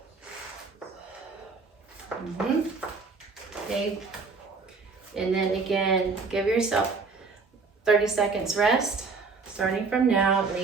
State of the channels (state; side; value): quieter; left; 4.4 dB